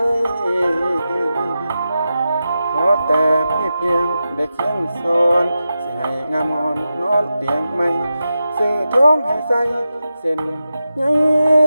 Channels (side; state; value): both; inverted; correlation -0.91